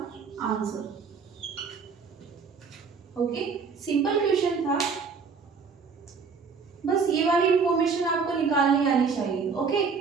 आंसर। ओके, सिंपल क्वेश्चन था, बस ये वाली इंफॉर्मेशन आपको निकालनी आनी चाहिए। ओके,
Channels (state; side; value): quieter; left; 5.4 dB